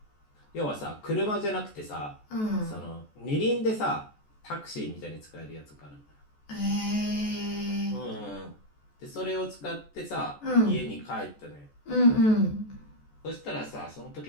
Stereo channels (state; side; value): late; right; 14 ms